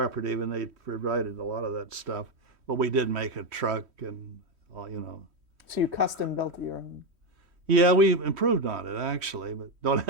and they provided a lot of that stuff. But we did make a truck and all. So you custom built your own? Yeah, we improved on it actually, but don't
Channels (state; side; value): late; left; 3.1 ms